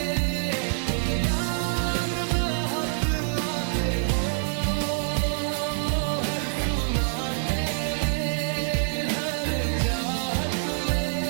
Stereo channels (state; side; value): silent; left; 61 dB below the other